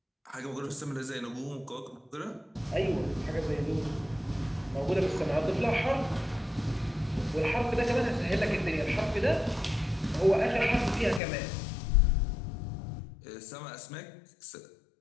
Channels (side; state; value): right; drops out; at 11.2 s